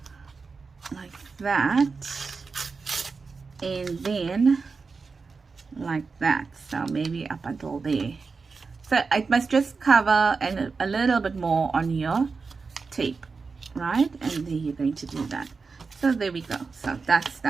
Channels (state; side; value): quieter; left; 4.6 dB